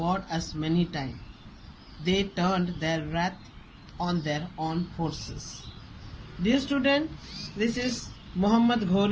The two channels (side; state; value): both; identical; correlation 1.00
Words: as many times. They turned their wrath on their own forces. Dear student, this is Muhammad